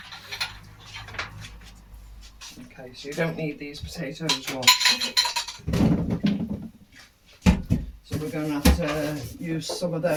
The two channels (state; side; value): identical; both; correlation 1.00